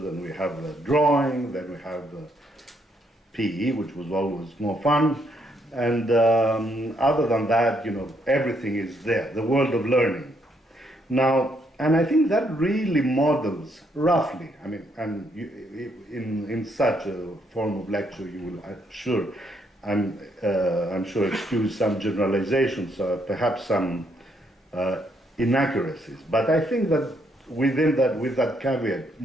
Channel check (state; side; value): normal; both; correlation 0.73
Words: we have drawing, then we have PE, which was always more fun. And other than that, everything is there, the world of learning. Now, and I think that really models, roughly, in such a form of lecture, you will, I'm sure, I'm sure excuse some generalizations, perhaps some inaccuracies. But I think that within that, with that caveat,